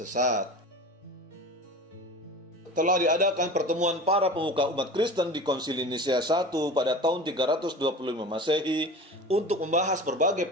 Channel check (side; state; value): both; normal; correlation 0.35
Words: Telah diadakan pertemuan para pemuka umat Kristen di Konsili Nisea I pada tahun 325 Masehi untuk membahas berbagai